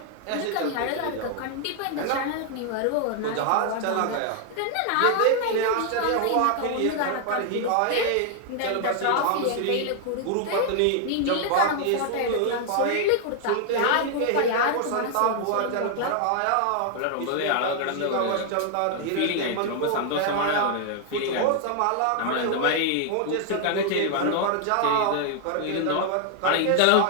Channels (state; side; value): different; both; correlation 0.00